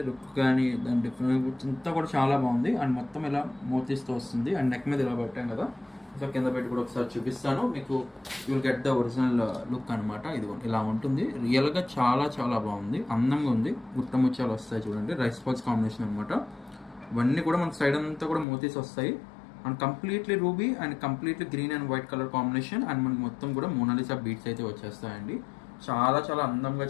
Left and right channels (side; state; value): right; drops out; at 18.4 s